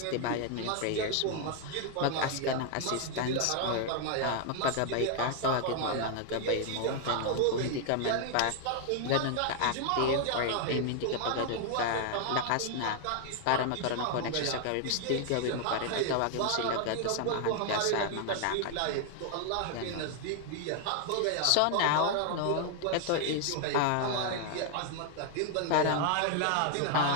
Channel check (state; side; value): different; both; correlation 0.00